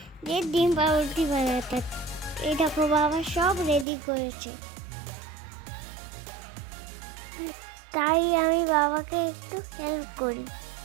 যে ডিম পাউরুটি বানাতে। এই দেখো বাবা সব রেডি করেছে, তাই আমি বাবাকে একটু হেল্প করি।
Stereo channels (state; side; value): drops out; left; at 3.9 s